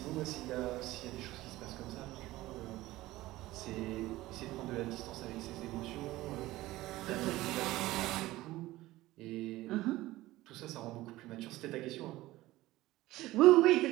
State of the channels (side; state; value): left; quieter; 17.5 dB